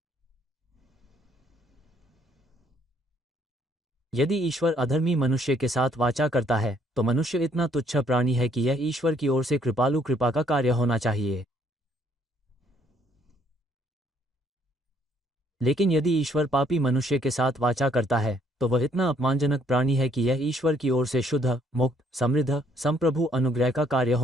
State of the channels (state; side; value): normal; both; correlation 0.66